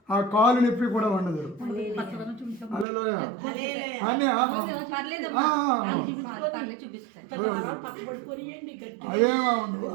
ఆ కాలు నొప్పి కూడా ఉండదు. హల్లెలూయా. అన్నీ అవేమో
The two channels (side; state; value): left; drops out; at 2.9 s